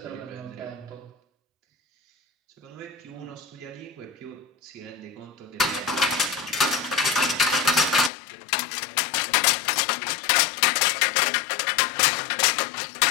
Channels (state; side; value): drops out; right; at 8.1 s